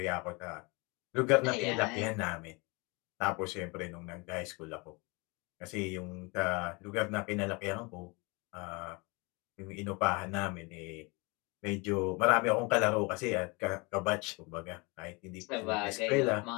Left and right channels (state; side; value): quieter; right; 28.2 dB